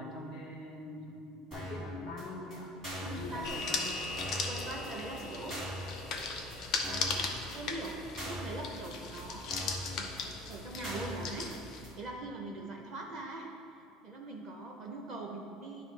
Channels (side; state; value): both; normal; correlation 0.46